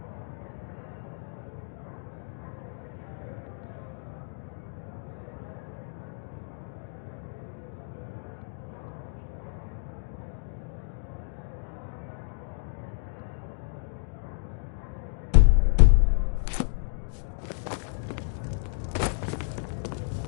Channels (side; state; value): right; silent; digital silence